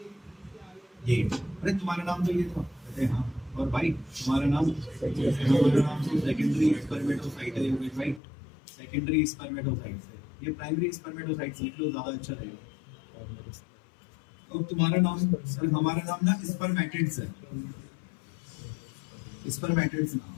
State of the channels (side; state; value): right; drops out; at 8.2 s